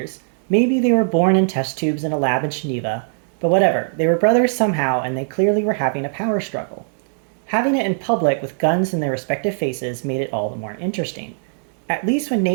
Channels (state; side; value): silent; left; digital silence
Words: maybe they were born in test tubes in a lab in Geneva, but whatever, they were brothers somehow and they clearly were having a power struggle. Having it in public with guns in their respective faces made it all the more interesting. At least when